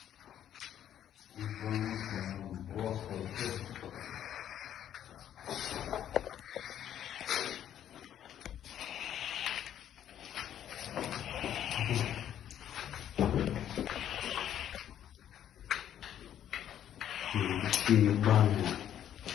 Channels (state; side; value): quieter; right; 10.5 dB